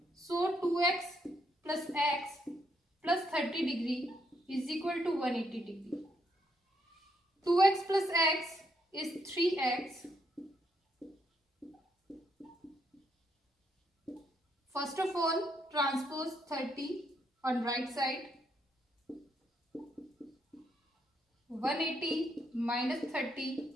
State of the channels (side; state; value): both; normal; correlation 0.75